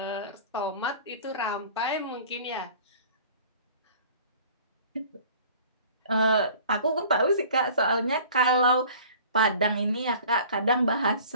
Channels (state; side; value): inverted; both; correlation -0.47